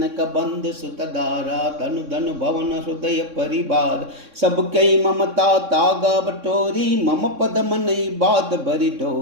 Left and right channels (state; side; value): late; left; 3.6 ms